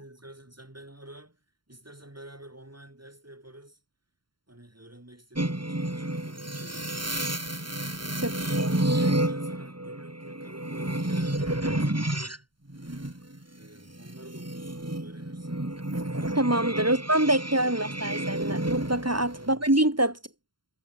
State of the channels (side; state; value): left; late; 0.73 ms